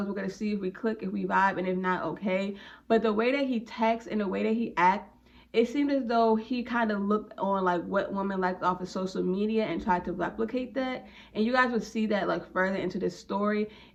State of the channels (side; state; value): both; identical; correlation 1.00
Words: We're going to see if we click, if we vibe, and if not, okay. But the way that he texts and the way that he acts, it seemed as though he kind of looked on like what women liked off of social media and tried to replicate that. And you guys would see that like further into the story.